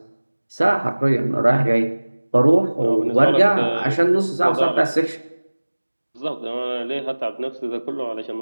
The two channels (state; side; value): inverted; both; correlation -1.00